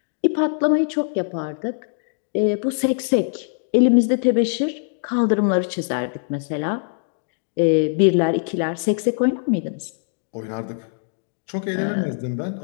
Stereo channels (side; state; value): right; silent; digital silence